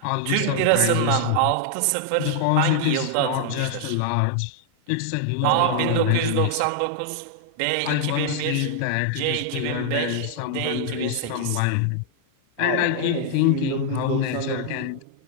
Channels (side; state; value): both; different; correlation 0.00